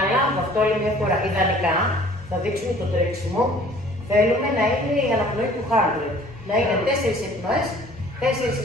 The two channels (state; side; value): normal; both; correlation 0.52